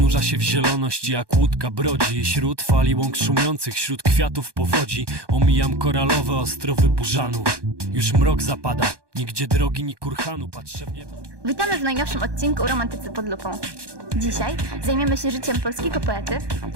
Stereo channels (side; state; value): left; late; 1.2 ms